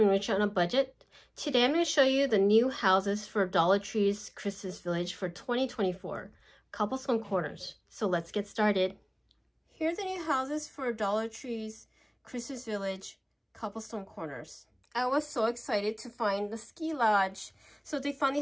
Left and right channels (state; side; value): identical; both; correlation 1.00